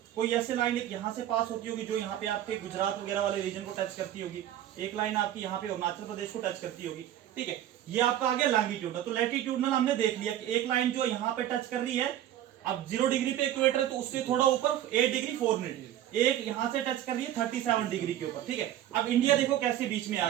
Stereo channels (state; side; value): quieter; left; 12.1 dB